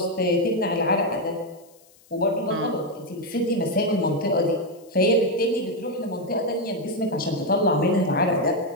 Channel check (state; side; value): noise; left; hiss, 29 dB below the sound